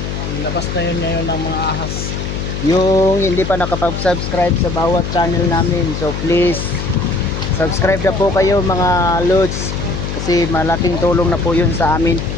ilabas na yun ngayon ng mga ahas. yung hindi pa nakapag-subscribe sa bawat channel namin, so please subscribe na po kayo mga lods, kasi malaking tulong na po yun sa amin.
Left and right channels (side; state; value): left; noise; hum, 5 dB below the sound